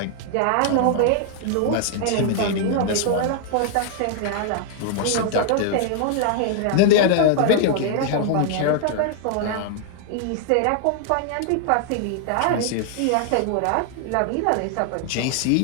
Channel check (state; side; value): different; both; correlation 0.00